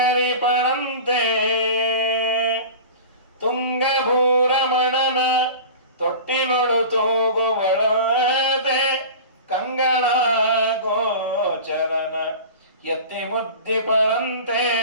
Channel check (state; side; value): inverted; both; correlation -0.35